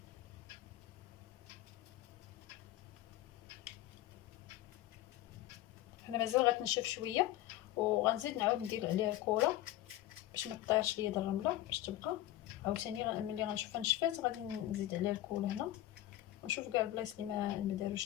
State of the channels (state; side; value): quieter; right; 14.8 dB